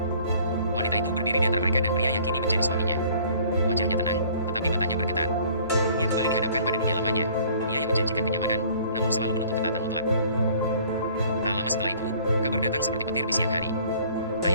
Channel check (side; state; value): both; inverted; correlation -0.53